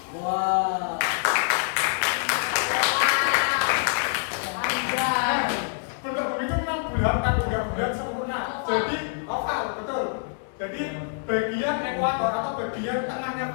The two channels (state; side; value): silent; right; digital silence